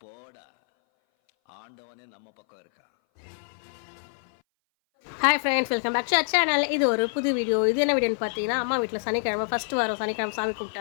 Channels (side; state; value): right; silent; 59 dB below the other